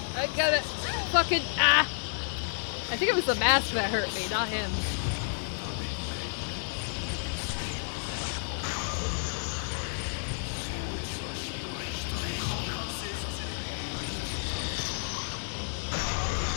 I gotta fucking I think it was the mask that hurt me, not him.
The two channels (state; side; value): silent; right; digital silence